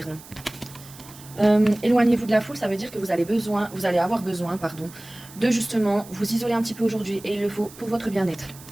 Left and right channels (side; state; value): right; noise; hiss, 19 dB below the sound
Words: non. Éloignez-vous de la foule, ça veut dire que vous allez avoir besoin de justement vous isoler un petit peu aujourd'hui et il le faut pour votre bien-être.